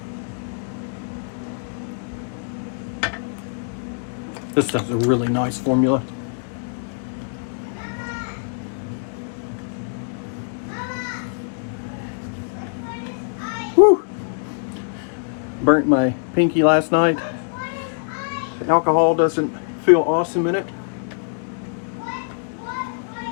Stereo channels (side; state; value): right; silent; digital silence